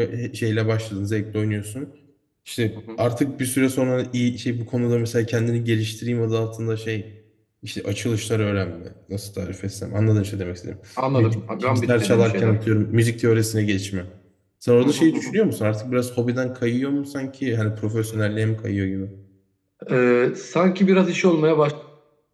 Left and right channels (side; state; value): both; identical; correlation 1.00